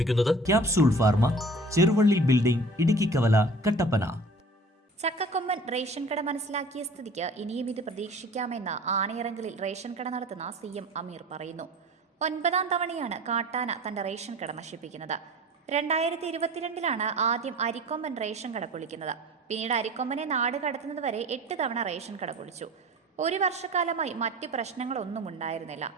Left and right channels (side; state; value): both; normal; correlation 0.43